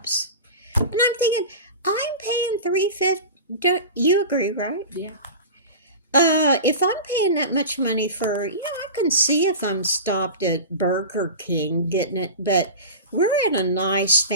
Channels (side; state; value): both; inverted; correlation -0.31